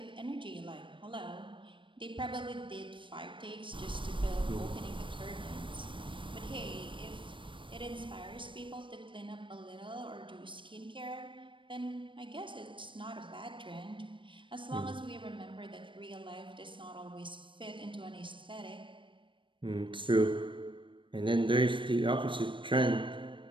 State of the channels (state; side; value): late; left; 0.24 ms